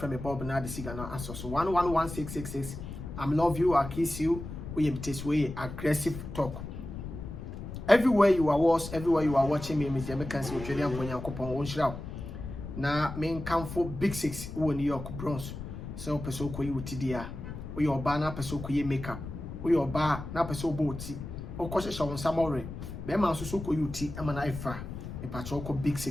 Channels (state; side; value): noise; left; rumble, 9 dB below the sound